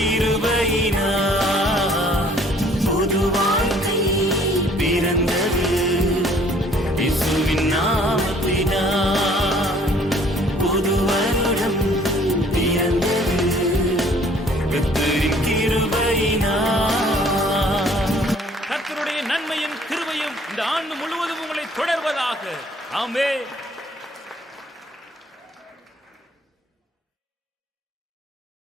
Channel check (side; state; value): both; normal; correlation 0.57